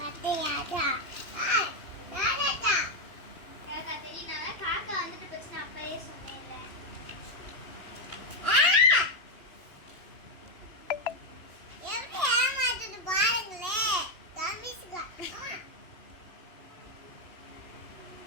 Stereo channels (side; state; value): right; late; 2.9 ms